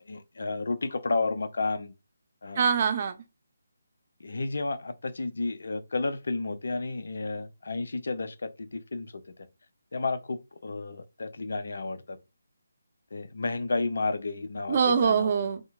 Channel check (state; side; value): inverted; both; correlation -0.82